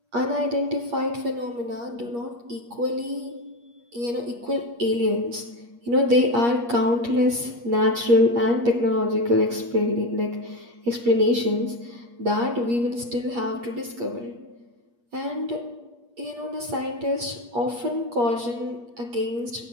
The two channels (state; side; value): late; left; 8.4 ms